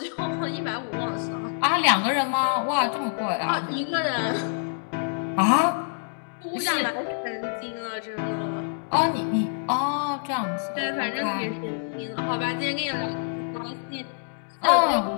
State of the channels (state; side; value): silent; right; digital silence